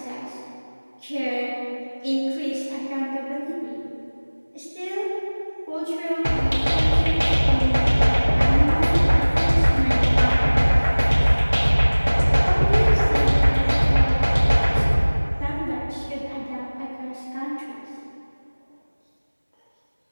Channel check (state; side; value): inverted; both; correlation -1.00